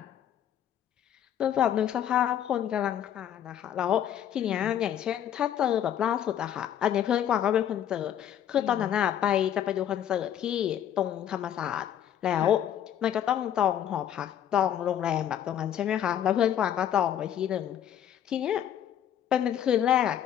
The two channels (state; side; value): quieter; right; 10.2 dB